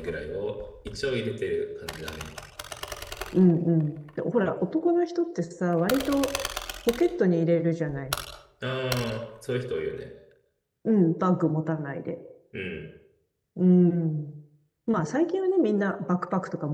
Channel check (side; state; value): both; identical; correlation 1.00